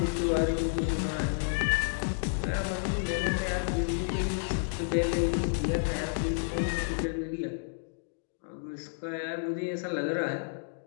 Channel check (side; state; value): right; silent; digital silence